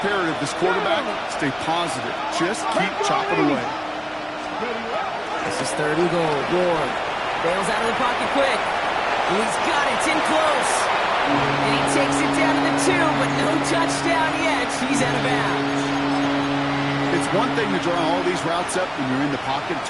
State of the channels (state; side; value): identical; both; correlation 1.00